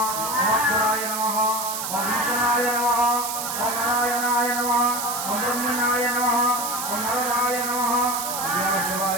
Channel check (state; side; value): noise; right; hiss, 4 dB below the sound